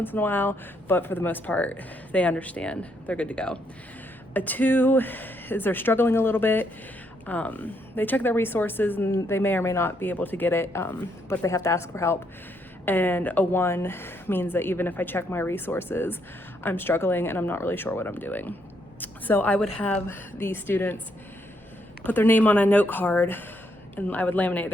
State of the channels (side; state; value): both; normal; correlation 0.74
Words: in a while, but for the most part, they understand, they're good to go. A 2 is they're struggling a little bit. They check their resources and they may or may not be able to get it, but they have to ask for help. And a 1 means that even if I check my resources, I'm struggling and I'm not really sure what I'm doing. So I would have these students put their name on a note card and I would laminate it.